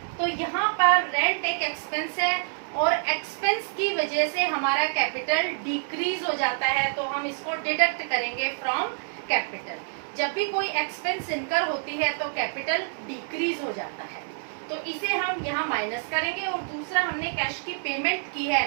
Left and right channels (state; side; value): silent; left; digital silence